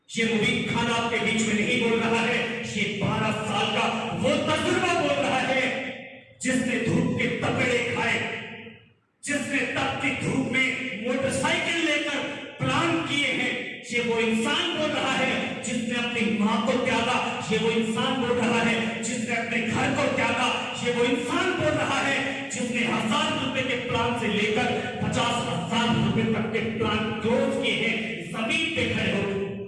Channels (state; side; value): identical; both; correlation 1.00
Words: ये मुबीन खान आपके बीच में नहीं बोल रहा है, ये 12 साल का वो तजुर्बा बोल रहा है जिसने धूप के तपेड़े खाए, जिसने जिसने तपती धूप में मोटरसाइकिल लेकर प्लान किए हैं, ये वो इंसान बोल रहा है जिसने अपनी माँ को त्यागा। ये वो इंसान बोल रहा है जिसने अपने घर को त्यागा। ये वो इंसान बोल रहा है जिसने 1000 रुपए के प्लान से लेकर 50,000 रुपए तक के प्लान क्लोज किए हैं जमीन पे खड़े हो।